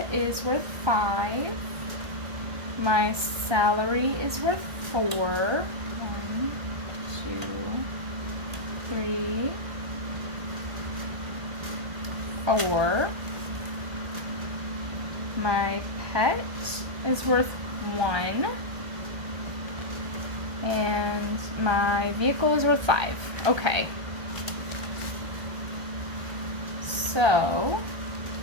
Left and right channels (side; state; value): left; late; 1.2 ms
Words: is worth 5. My salary is worth 4. 1, 2, 3, 4. My pet is worth 1. And my vehicle is worth 5. Okay. So,